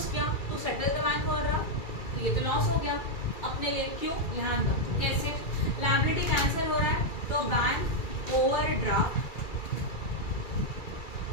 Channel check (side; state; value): right; late; 2.3 ms